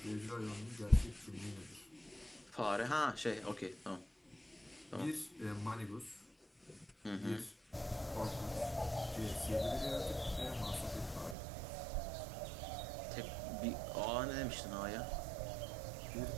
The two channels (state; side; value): drops out; left; at 11.4 s